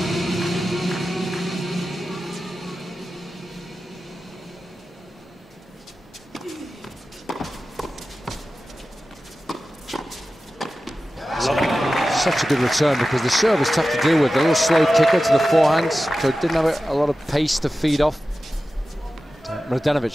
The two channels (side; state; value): both; normal; correlation 0.94